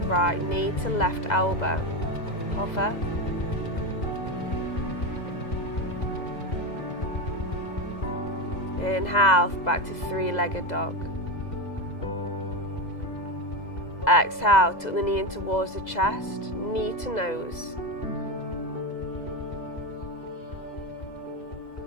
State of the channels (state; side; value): late; right; 2.0 ms